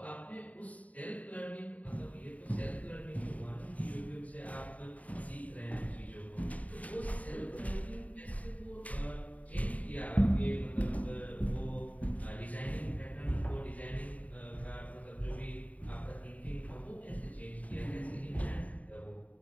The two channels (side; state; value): right; late; 0.070 ms